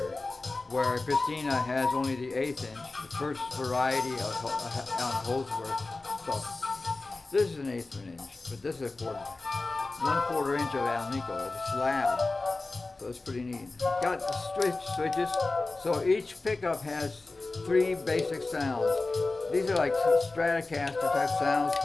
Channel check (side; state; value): right; quieter; 3.4 dB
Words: where Christina has only the 1/8 inch, the first variety of Holdsworth. So this is an 1/8 inch, but this is a 1/4 inch of Alnico. It's a slab, so it's pretty neat. Got the switches, so each pickup has 3 basic sounds. These are like Stratocaster type sounds,